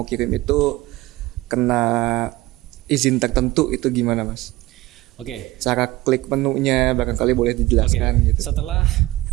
kirim itu kena izin tertentu itu gimana Mas? Oke. Cara klik menunya barangkali boleh dijelaskan gitu. Setelah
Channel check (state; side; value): quieter; left; 18.3 dB